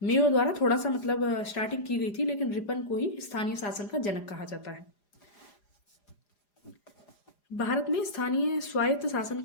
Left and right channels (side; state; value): right; late; 4.9 ms